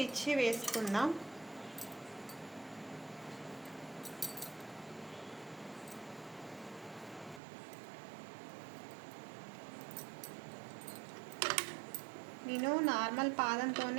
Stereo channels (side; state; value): left; drops out; at 7.4 s